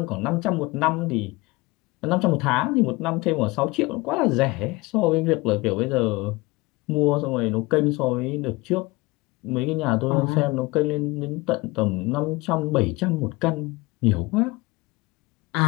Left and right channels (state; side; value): quieter; right; 22.5 dB